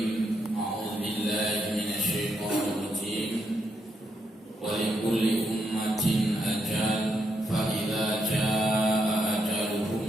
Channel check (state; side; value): normal; both; correlation 0.79